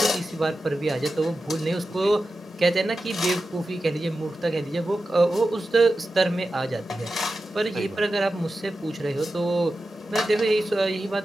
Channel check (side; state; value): both; normal; correlation 0.92